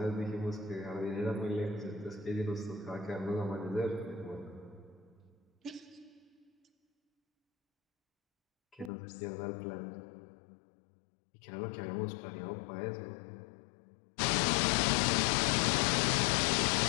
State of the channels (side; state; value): right; drops out; at 8.9 s